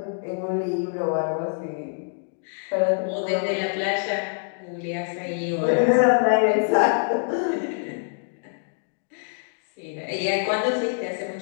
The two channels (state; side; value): silent; right; digital silence